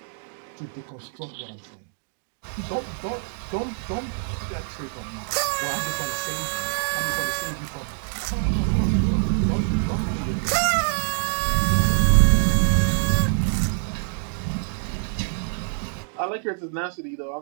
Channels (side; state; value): left; silent; digital silence